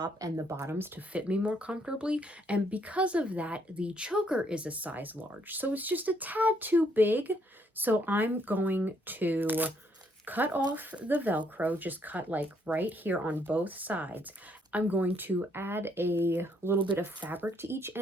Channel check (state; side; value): normal; both; correlation 0.70